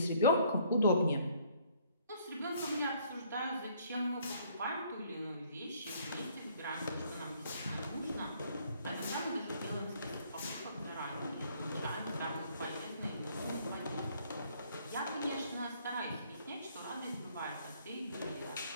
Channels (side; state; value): both; inverted; correlation -0.63